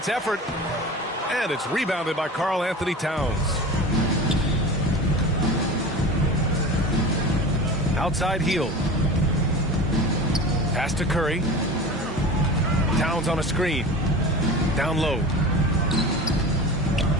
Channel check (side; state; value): both; normal; correlation 0.33